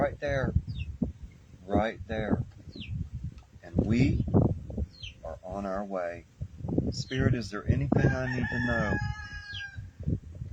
there. Right there. And we are on our way. Spirit, is there anything I need to know?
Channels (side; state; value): both; identical; correlation 1.00